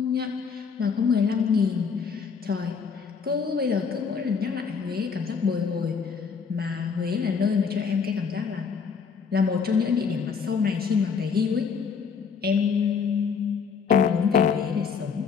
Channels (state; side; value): quieter; right; 6.0 dB